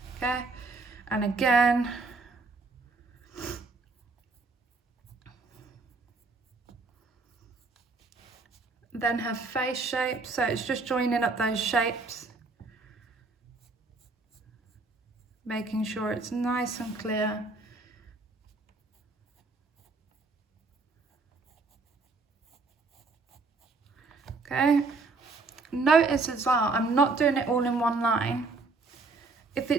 Okay, and again. Then her face shape, so it's just joining up those shapes. Making sure it's nice and clear. Okay, notice as well, I'm not doing it all in one line. If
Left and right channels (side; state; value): left; quieter; 3.8 dB